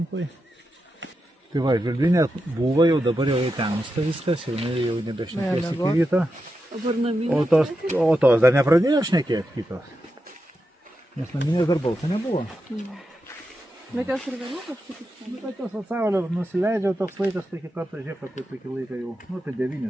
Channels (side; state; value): both; normal; correlation 0.88